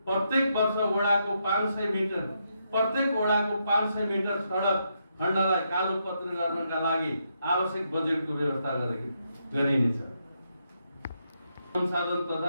प्रत्येक वडाको 500 मिटर सडक खण्डलाई कालोपत्री गर्नका लागि आवश्यक बजेटको व्यवस्था गरिनेछ। संसाधन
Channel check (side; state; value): both; inverted; correlation -0.80